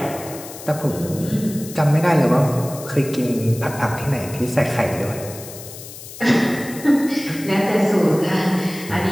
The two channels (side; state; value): left; noise; hiss, 14 dB below the sound